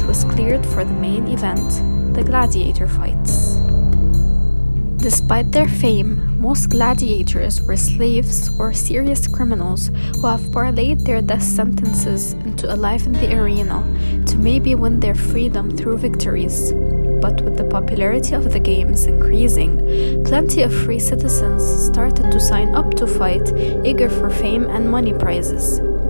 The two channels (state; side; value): inverted; both; correlation -1.00